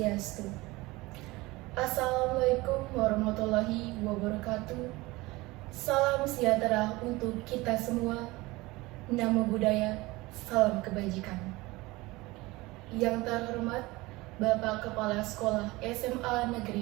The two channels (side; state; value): left; quieter; 21.3 dB